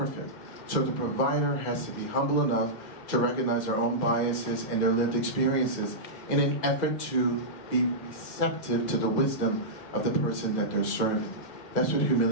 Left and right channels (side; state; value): right; late; 2.0 ms